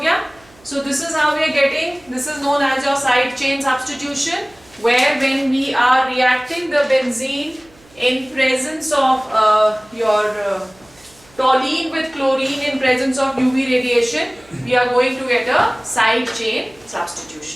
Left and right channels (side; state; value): right; noise; hum, 28 dB below the sound